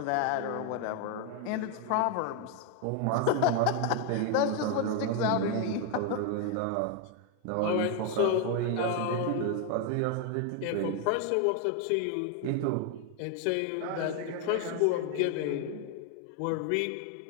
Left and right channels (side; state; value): both; different; correlation 0.01